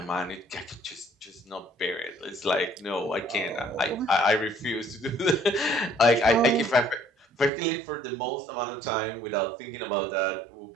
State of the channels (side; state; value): left; drops out; at 7.5 s